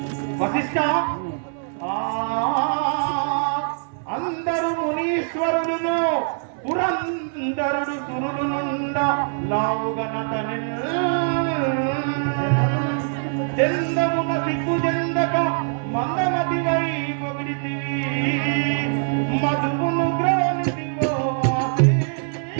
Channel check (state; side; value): silent; left; 63 dB below the other